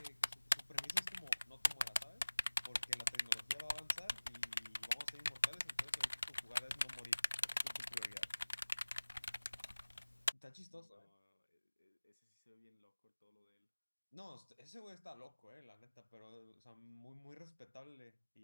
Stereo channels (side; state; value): both; inverted; correlation -1.00